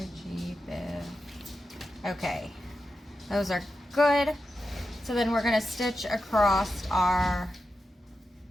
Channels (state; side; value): normal; both; correlation 0.90